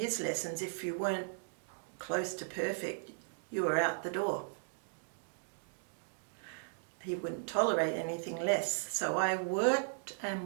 lessons, if you weren't close to perfect, you were out the door. He wouldn't tolerate anything less. So I worked and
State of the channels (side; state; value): left; silent; digital silence